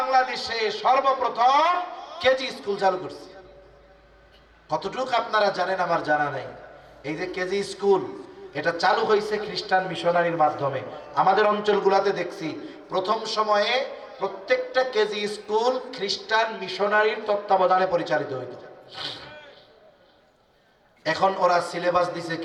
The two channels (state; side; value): identical; both; correlation 1.00